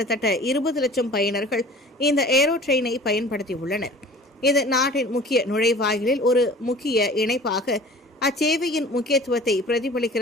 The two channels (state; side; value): normal; both; correlation 0.44